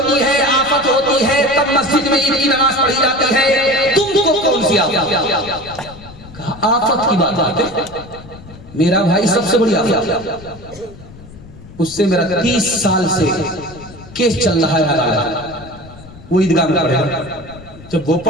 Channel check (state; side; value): noise; left; rumble, 18 dB below the sound